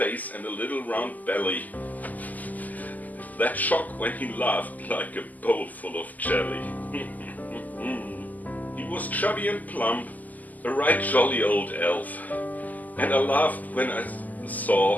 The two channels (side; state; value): right; late; 0.081 ms